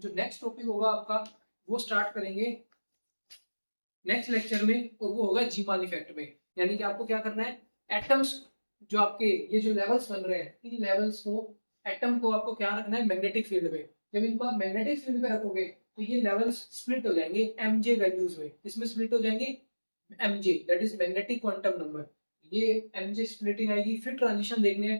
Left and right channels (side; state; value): both; inverted; correlation -1.00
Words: नेक्स्ट टॉपिक होगा आपका, वो स्टार्ट करेंगे नेक्स्ट लेक्चर में, और वो होगा जीमान इफेक्ट में। यानी कि आपको क्या करना है, एटम्स जो आपके ये जो लेवल्स बन रहे हैं, इन लेवल्स को, एटम को आपको क्या रखना है मैग्नेटिक फील्ड में। जब इनको आप मैग्नेटिक फील्ड में रखोगे तो ये लेवल्स स्प्लिट हो जाएंगे MJ वैल्यूज में, इसमें स्प्लिट हो जाएंगे MJ, that is magnetic quantum number. ये MJ स्प्लिटिंग आएगी, फिर ट्रांजिशन देखने हैं,